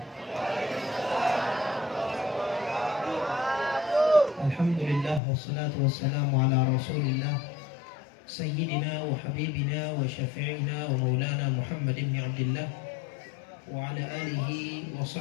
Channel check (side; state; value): right; drops out; at 5.2 s